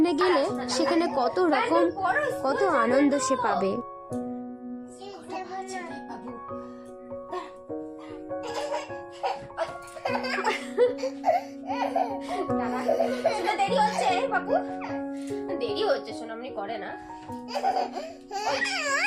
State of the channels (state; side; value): identical; both; correlation 1.00